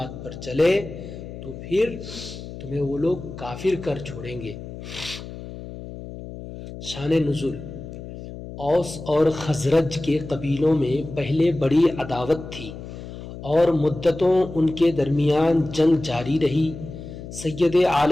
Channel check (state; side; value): noise; left; hum, 12 dB below the sound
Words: پر چلے تو پھر تمہیں وہ لوگ کافر کر چھوڑیں گے۔ شان نزول: اوس اور خزرج کے قبیلوں میں پہلے بڑی عداوت تھی اور مدتوں ان کے درمیان جنگ جاری رہی۔ سید